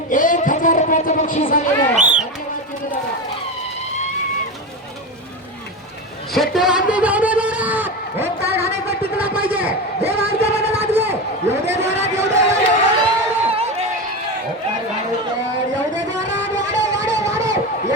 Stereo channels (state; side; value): normal; both; correlation 0.20